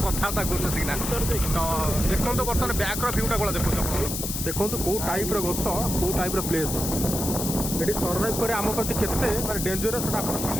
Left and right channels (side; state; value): left; noise; hiss, 4 dB below the sound